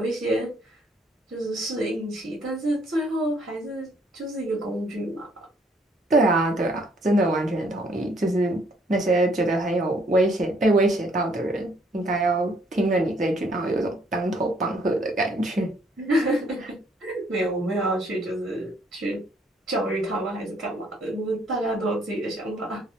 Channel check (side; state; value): both; normal; correlation 0.65